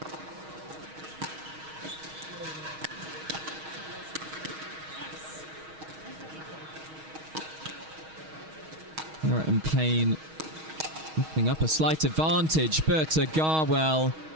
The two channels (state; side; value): late; left; 6.3 ms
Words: Merritt and Payne looking up a slight advantage, but Garwell.